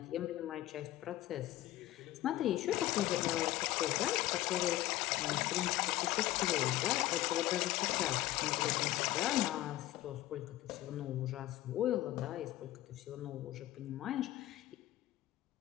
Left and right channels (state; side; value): quieter; right; 15.7 dB